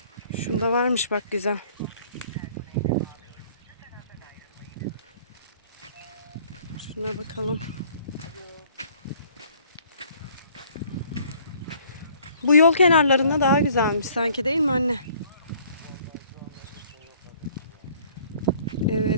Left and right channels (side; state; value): both; inverted; correlation -0.57